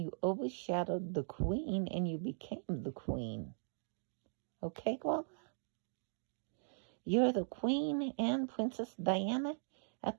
overshadowed the queen, and you became the queen. Okay, Grandma? You're the queen and Princess Diana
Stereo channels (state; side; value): silent; left; digital silence